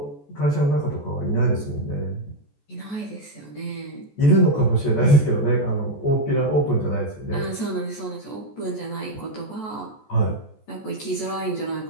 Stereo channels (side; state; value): right; late; 14 ms